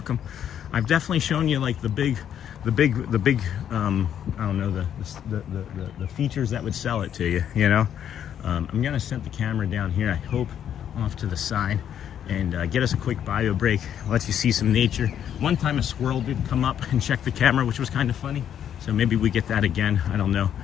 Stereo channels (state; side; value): quieter; right; 9.5 dB